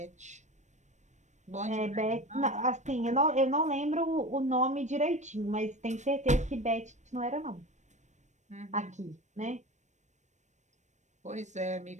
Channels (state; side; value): late; left; 0.34 ms